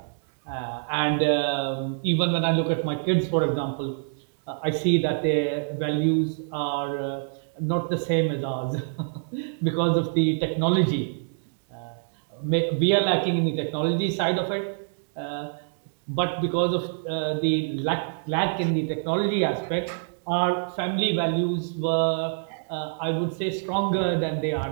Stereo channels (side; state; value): left; silent; digital silence